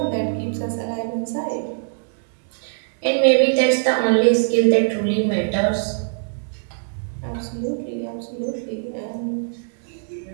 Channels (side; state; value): left; silent; digital silence